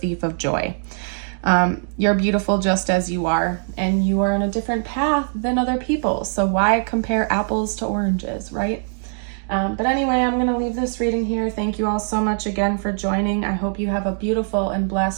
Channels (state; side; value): silent; left; digital silence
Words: of joy. You're beautiful just as you are, and you are on a different path than other people. So why compare apples to oranges, right? But anyway, I'm going to leave this reading here. Thank you all so much again for joining. I hope you have a beautiful and